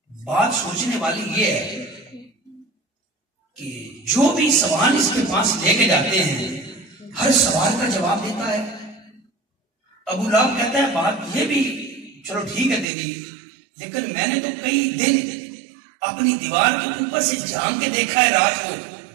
بات سوچنے والی یہ ہے کہ جو بھی سوال اس کے پاس لے کے جاتے ہیں ہر سوال کا جواب دیتا ہے۔ ابو لہب کہتا ہے بات یہ بھی چلو ٹھیک ہے تیری، لیکن میں نے تو کئی دن اپنی دیوار کے اوپر سے جھانک کے دیکھا ہے، رات کو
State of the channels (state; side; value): drops out; left; at 12.9 s